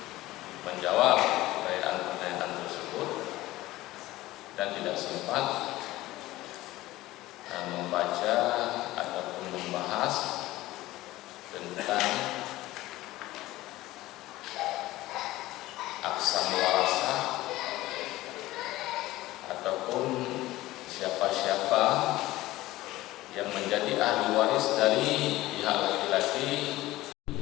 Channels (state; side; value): quieter; right; 17.3 dB